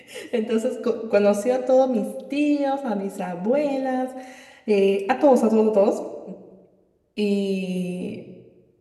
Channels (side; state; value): both; identical; correlation 1.00